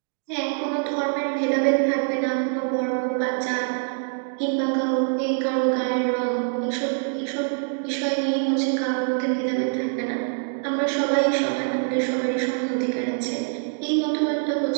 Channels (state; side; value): silent; left; digital silence